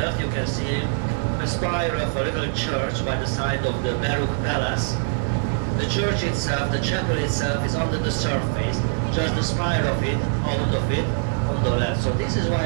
you can see a spire of a little church by the side of the Baroque palace. The church itself, the chapel itself, is under the surface, just the spire of it, out of it, on the left. So this is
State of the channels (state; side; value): silent; left; 63 dB below the other